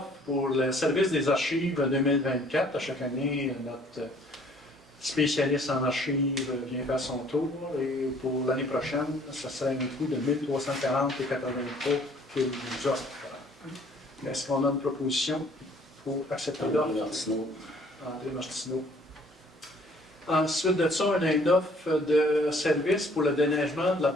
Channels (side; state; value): both; normal; correlation 0.58